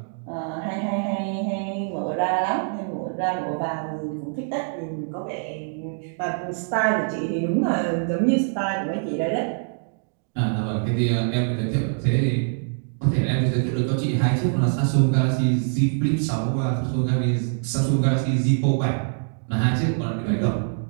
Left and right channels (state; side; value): silent; left; digital silence